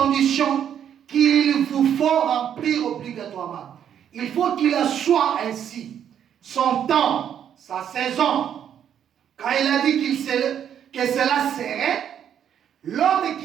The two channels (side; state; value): left; quieter; 9.2 dB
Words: qu'il vous faut remplir obligatoirement. Il faut qu'il soit ainsi. Son temps, sa saison. Quand il a dit que cela serait, l'homme